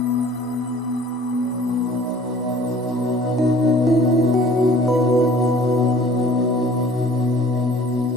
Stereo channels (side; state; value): both; normal; correlation 0.51